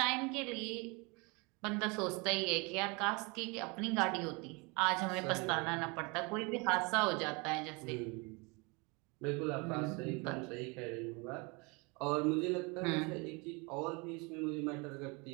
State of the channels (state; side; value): quieter; left; 29.1 dB